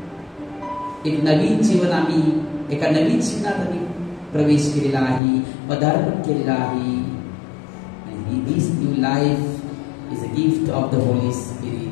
एक नवीन जीवन, आम्ही एका नवीन जीवनात आम्ही प्रवेश केलेला आहे, पदार्पण केलेला आहे. And this new life is a gift of the Holy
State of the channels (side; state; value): right; drops out; at 5.2 s